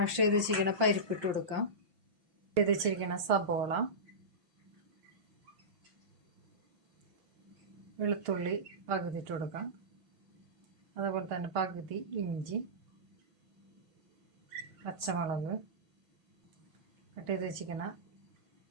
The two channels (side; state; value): left; late; 6.5 ms